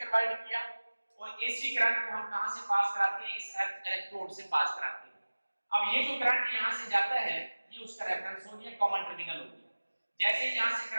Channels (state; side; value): inverted; both; correlation -1.00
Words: किया और एसी करंट को हम कहां से पास कराते हैं, इस अर्थ इलेक्ट्रोड से पास कराते हैं। अब ये जो करंट यहां से जाता है ये उसका रेफरेंस हो गया, कॉमन टर्मिनल हो गया। जैसे ही यहां से